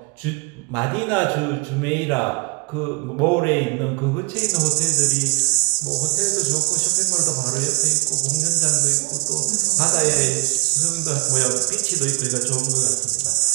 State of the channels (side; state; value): left; quieter; 32.2 dB